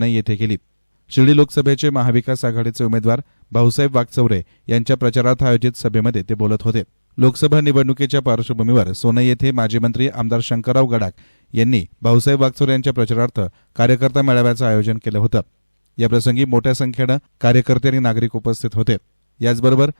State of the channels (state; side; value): inverted; both; correlation -1.00